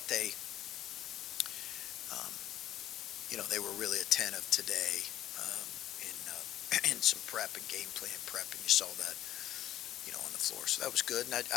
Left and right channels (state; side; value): quieter; right; 12.5 dB